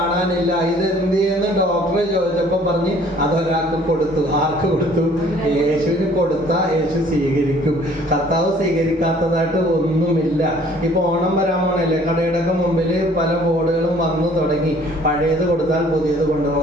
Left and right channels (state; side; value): normal; both; correlation 0.56